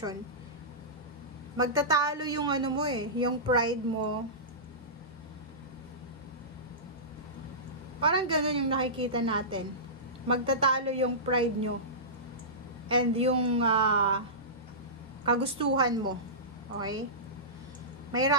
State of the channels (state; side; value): normal; both; correlation -0.19